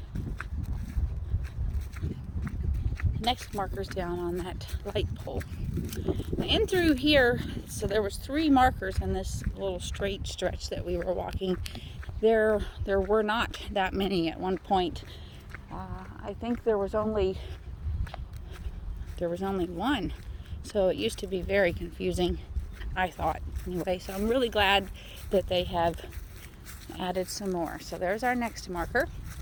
Next marker's down on that light pole. And through here, so there was 3 markers in this little straight stretch that we were walking. There were not that many at one point. I think there was only one. So it used to be very confusing, I thought, anyway. So I'm really glad that they have added some more. So there's our next marker.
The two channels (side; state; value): both; identical; correlation 1.00